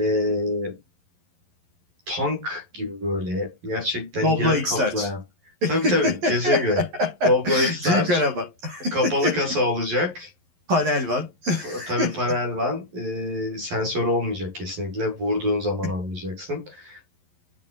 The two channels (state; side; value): late; left; 11 ms